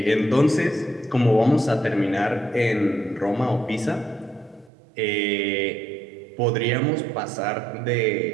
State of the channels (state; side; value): drops out; left; at 4.7 s